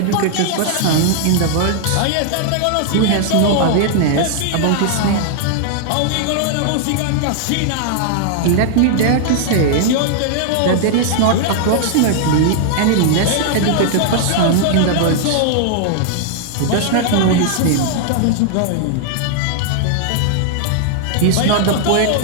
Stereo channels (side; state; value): both; different; correlation -0.01